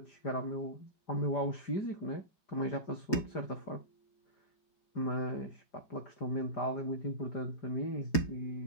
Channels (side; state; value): right; late; 4.8 ms